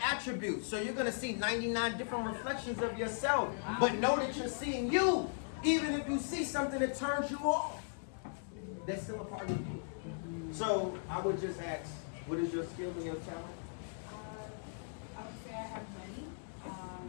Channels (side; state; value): right; silent; digital silence